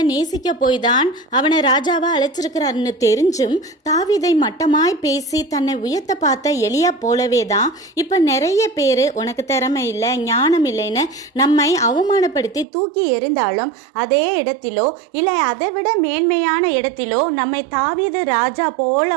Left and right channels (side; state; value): left; drops out; at 12.7 s